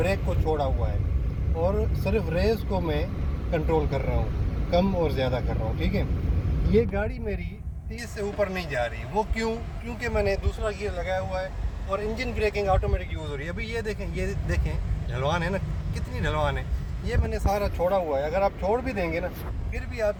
को छोड़ा हुआ है और सिर्फ रेस को मैं कंट्रोल कर रहा हूँ, कम और ज़्यादा कर रहा हूँ, ठीक है। ये गाड़ी मेरी 30 से ऊपर नहीं जा रही, वो क्योंकि मैंने दूसरा गियर लगाया हुआ है और इंजन ब्रेकिंग ऑटोमेटिक यूज़ हो रही है। अभी ये देखें ढलवान है ना, कितनी ढलवान है। ये मैंने सारा छोड़ा हुआ है, अगर आप छोड़ भी देंगे ना फिर भी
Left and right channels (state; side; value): identical; both; correlation 1.00